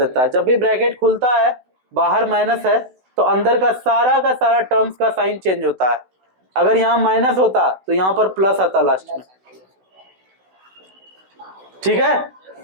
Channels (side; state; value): left; late; 16 ms